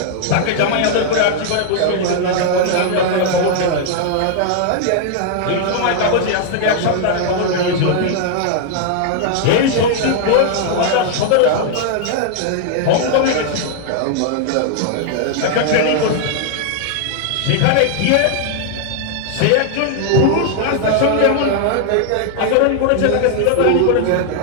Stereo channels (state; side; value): different; both; correlation 0.00